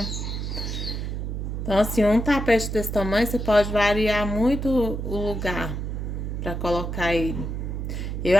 Então, assim, um tapete desse tamanho, você pode variar muito o lugar pra colocar ele. Eu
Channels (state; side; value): noise; right; hum, 4 dB below the sound